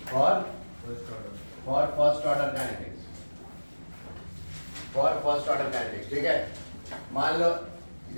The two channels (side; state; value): both; inverted; correlation -1.00